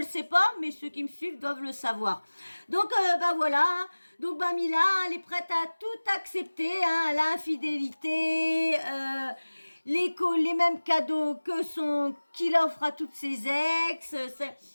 sait pas, mais ceux qui me suivent doivent le savoir. Donc, voilà. Donc, Mila, elle est prête à tout accepter. Hein, l'infidélité, les mêmes cadeaux qu'il offre à toutes ses ex,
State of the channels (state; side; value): inverted; both; correlation -1.00